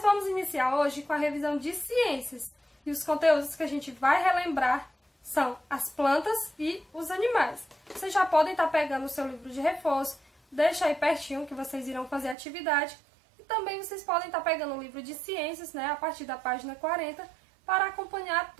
vamos iniciar hoje com a revisão de ciências. E os conteúdos que a gente vai relembrar são as plantas e os animais. Vocês já podem estar pegando o seu livro de reforço, deixa aí pertinho que vocês irão fazer a atividade. E também vocês podem estar pegando o livro de ciências, a partir da página 40, para acompanhar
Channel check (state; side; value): drops out; left; at 12.4 s